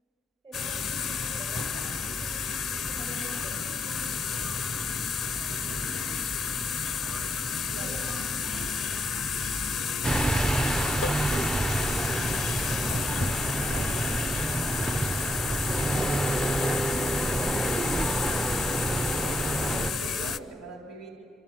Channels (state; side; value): normal; both; correlation 0.79